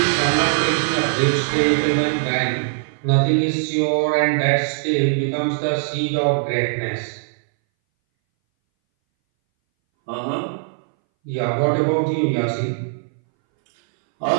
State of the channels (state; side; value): silent; left; 62 dB below the other